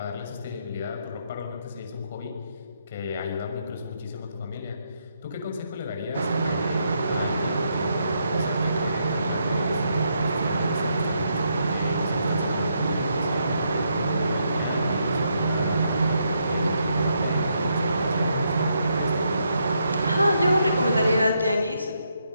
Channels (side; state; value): both; inverted; correlation -0.78